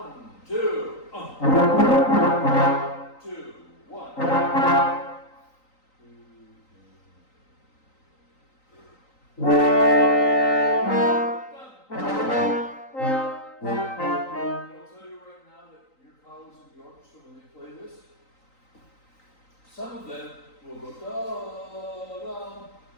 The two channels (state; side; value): late; right; 3.9 ms